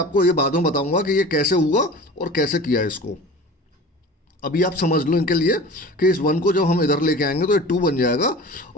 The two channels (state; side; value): normal; both; correlation 0.37